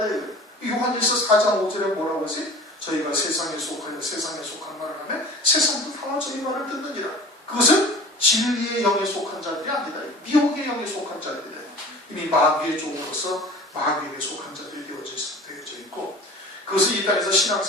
돼요. 요한일서 4장 5절에 뭐라고 하세요? 저희가 세상에 속하여 세상에 속한 말을 하면 세상도 다 저희 말을 듣느니라. 그것은 진리의 영에 속한 자들이 아니다. 미혹의 영에 속한 자들이다. 이미 마귀의 종으로서 마귀에게 속한 자들이 되어져 있고 그것을 이 땅에서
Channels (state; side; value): normal; both; correlation 0.41